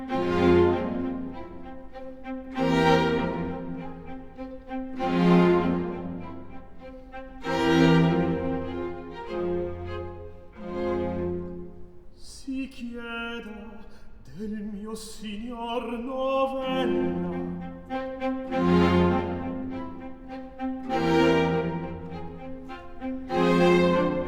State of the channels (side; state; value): both; identical; correlation 1.00